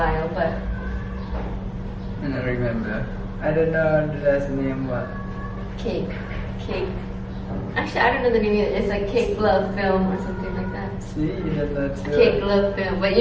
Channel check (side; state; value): both; identical; correlation 1.00